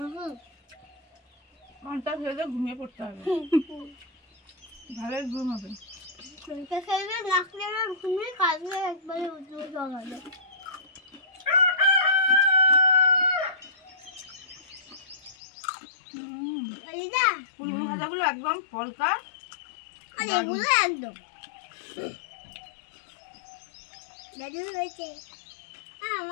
পান্তা খেলে ঘুমিয়ে পড়তে হবে, ভালোই ঘুম হবে। শুনতে খেলে নাকলে ঘুমিয়ে কাজে একবারে উঠে জগাবে। দিদা ফুলগুলো ভাজাগুলো একদম পলকা, আর এগুলো একদম দাদু হয়েছে।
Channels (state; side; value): drops out; right; at 15.4 s